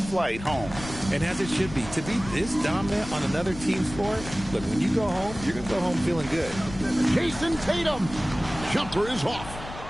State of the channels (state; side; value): noise; left; rumble, 12 dB below the sound